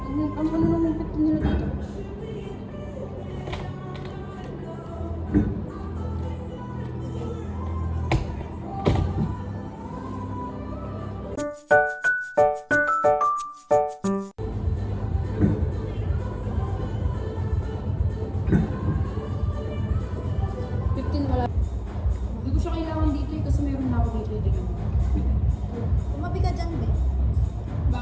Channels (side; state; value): both; identical; correlation 1.00